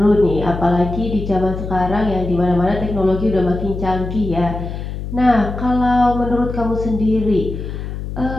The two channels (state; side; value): noise; left; hum, 7 dB below the sound